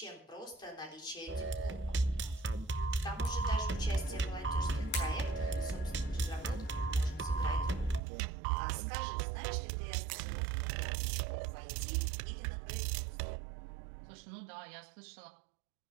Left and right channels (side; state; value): left; drops out; at 8.0 s